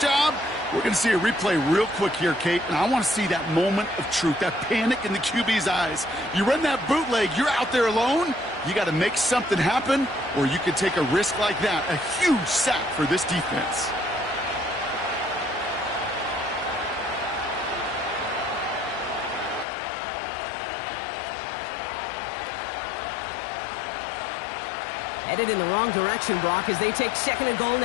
we're going to see a replay real quick here, Kate, and I want to see that moment of truth, that panic in the QB's eyes. You run that bootleg, you're out there alone, you got to make something happen, or you could take a risk like that, a huge sack for this defense. Headed in the wrong direction, Brock, as they take second and goal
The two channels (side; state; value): right; drops out; at 19.7 s